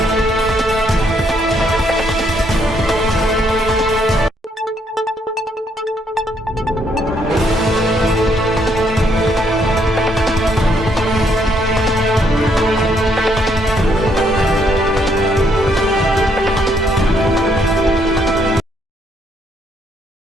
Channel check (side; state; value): both; normal; correlation 0.71